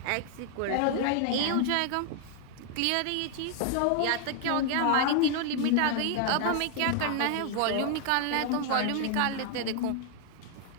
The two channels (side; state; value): both; different; correlation 0.00